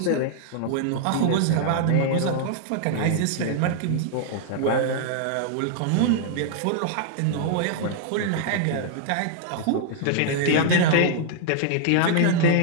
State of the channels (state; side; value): different; both; correlation -0.01